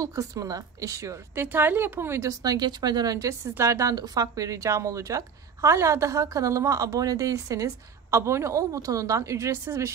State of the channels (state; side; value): quieter; left; 6.5 dB